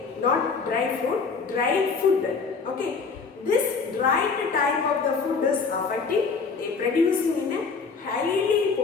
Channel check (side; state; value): right; quieter; 4.9 dB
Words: not dry fruit, dry food. Okay. This dried type of the food is affecting, they producing in a highly